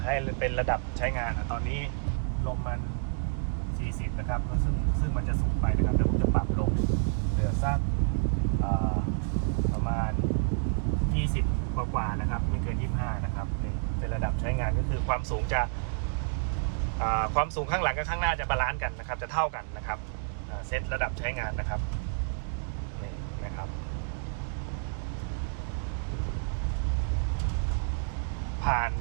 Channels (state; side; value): silent; left; digital silence